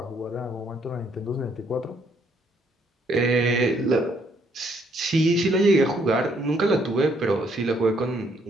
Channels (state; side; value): normal; both; correlation 0.69